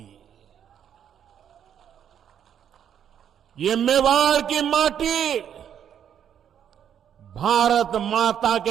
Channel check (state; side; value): quieter; left; 9.1 dB